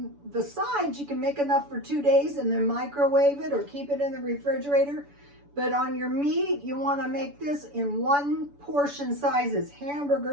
the sides, you can make enough for 2 days and then microwave it or keep it in the refrigerator. But on your meat, you want to make this in 1 portion sizes,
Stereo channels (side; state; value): left; late; 7.0 ms